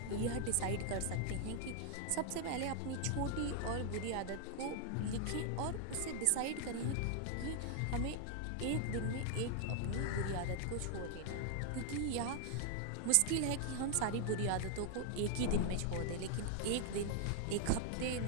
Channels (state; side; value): different; both; correlation 0.00